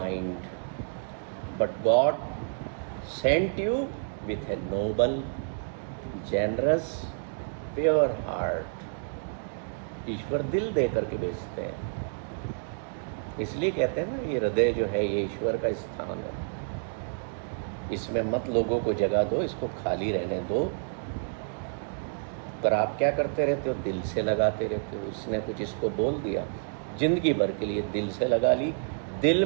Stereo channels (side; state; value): left; silent; digital silence